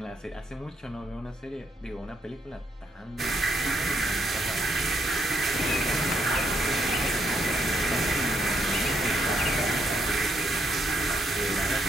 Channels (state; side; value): normal; both; correlation 0.76